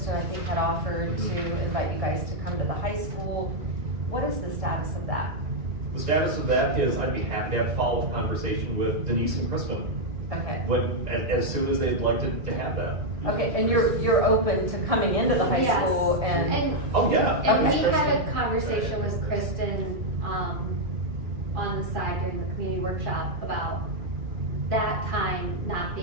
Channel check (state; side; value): late; left; 1.7 ms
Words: I think, had offered to invite you guys to come to the high school. What is the status of that? The status of that is I'd be happy to have a follow-up conversation with Denise and Kristen, Okay. as soon as they'd like to have that. Okay, and you're open to coming into the high Yes. school and. Oh, yeah. and we Okay. had a conversation with Kristen, on the side during the community workshop about that time not